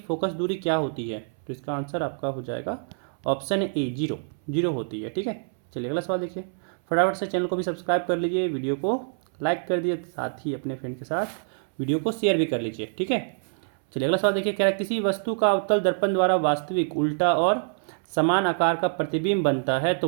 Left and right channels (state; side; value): silent; left; 61 dB below the other